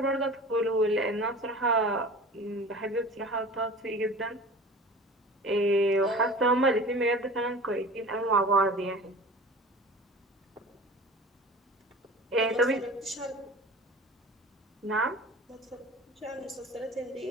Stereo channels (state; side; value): normal; both; correlation 0.39